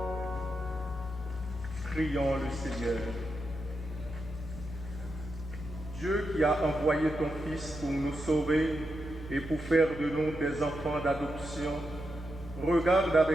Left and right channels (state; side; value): noise; left; hum, 11 dB below the sound